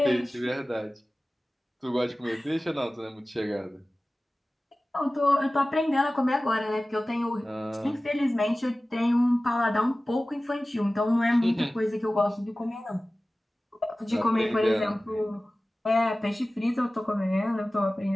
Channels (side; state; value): both; normal; correlation 0.97